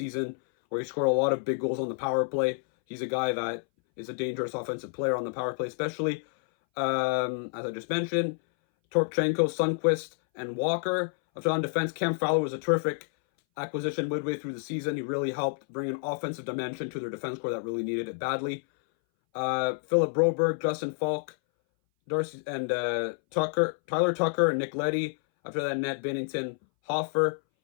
where he scored a lot of big goals on the power play. He's a guy that is a dangerous offensive player on the power play, especially, as I just mentioned, Torpchenko, Sundqvist, and Walker. After on defense, Cam Fowler was a terrific acquisition midway through the season. He really helped bring an offensive dimension to their defense core that really needed it badly. Philip Broberg, Justin Falk, Darcy and Tyler Tucker, and Nick Leddy. After that, Ned Binnington, Hoffer.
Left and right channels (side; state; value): right; silent; 59 dB below the other